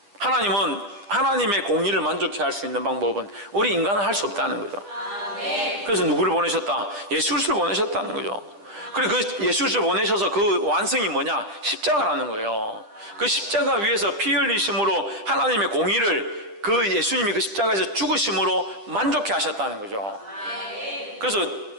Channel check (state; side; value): late; left; 9.8 ms